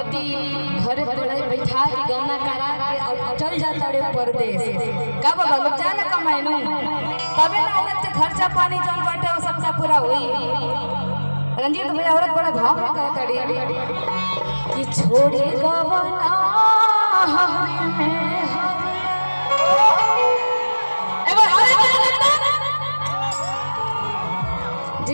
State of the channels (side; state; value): both; inverted; correlation -1.00